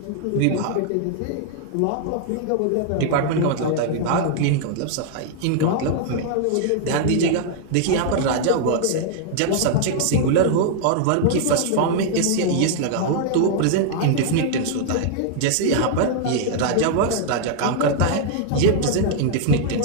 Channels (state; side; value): different; both; correlation 0.00